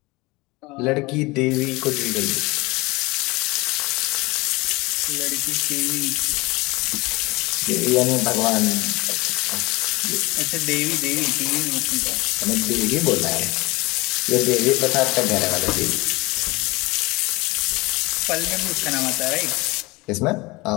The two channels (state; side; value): quieter; right; 23.2 dB